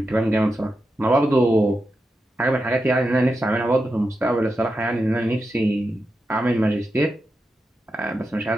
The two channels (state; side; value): normal; both; correlation 0.88